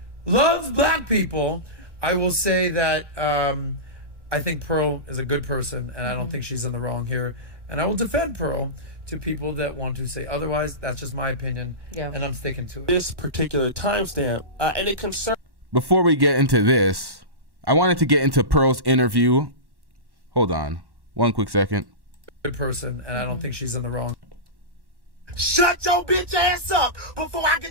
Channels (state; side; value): late; left; 1.1 ms